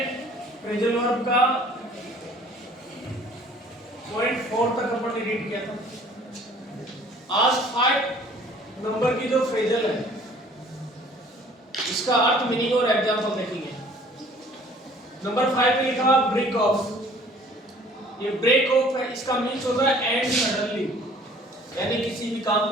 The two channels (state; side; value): normal; both; correlation 0.53